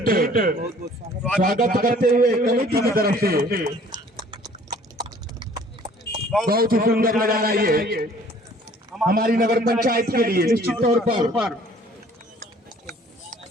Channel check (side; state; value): both; normal; correlation 0.54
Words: स्वागत करते हुए कमेटी की तरफ से बहुत ही सुंदर नजारा ये हमारी नगर पंचायत के लिए निश्चित तौर पर